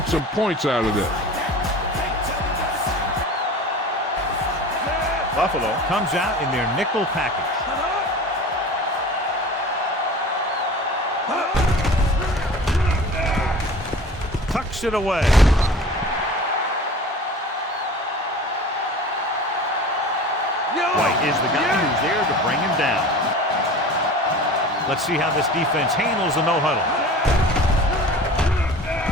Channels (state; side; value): normal; both; correlation 0.39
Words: some points out of this. Buffalo comes out in their nickel package. Tucks it away. White is the guy who's there to bring him down. Let's see how this defense handles the no-huddle.